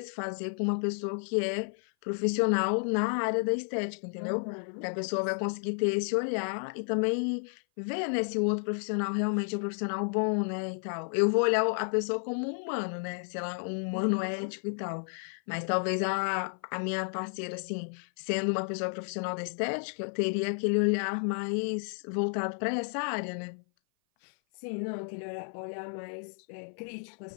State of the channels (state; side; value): silent; right; 56 dB below the other